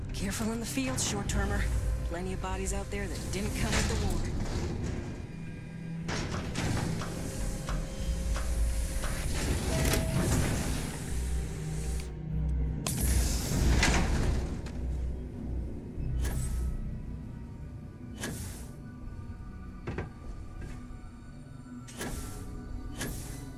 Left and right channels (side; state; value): both; identical; correlation 1.00